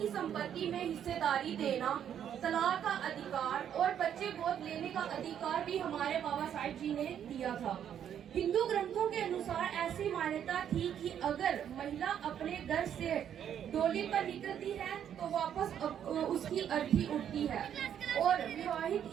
संपत्ति में हिस्सेदारी देना, तलाक का अधिकार और बच्चे गोद लेने का अधिकार भी हमारे बाबा साहिब जी ने दिया था। हिंदू ग्रंथों के अनुसार ऐसी मान्यता थी कि अगर महिला अपने घर से डोली पर निकलती है तो वापस उसकी अर्थी उठती है, और विवाहित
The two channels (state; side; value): quieter; left; 9.4 dB